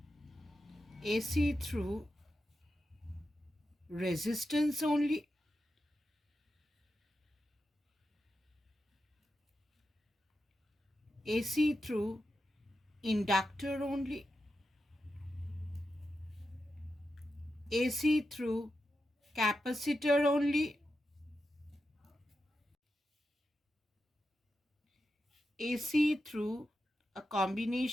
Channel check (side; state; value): both; normal; correlation 0.89